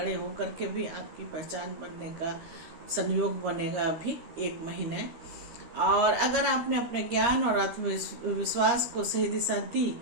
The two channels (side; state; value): left; late; 13 ms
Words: होकर के भी आपकी पहचान बनने का संयोग बनेगा अभी 1 महीने। और अगर आपने अपने ज्ञान और आत्मविश्वास को सही दिशा दी